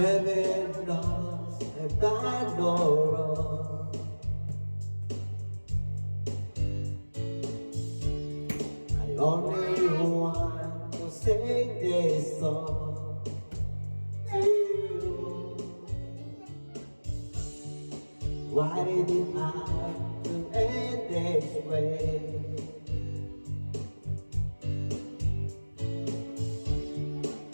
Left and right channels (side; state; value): both; inverted; correlation -1.00